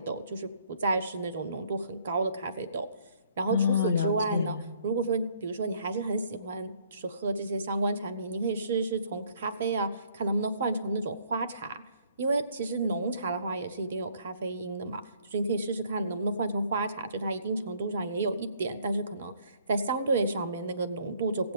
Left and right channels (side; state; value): both; inverted; correlation -0.63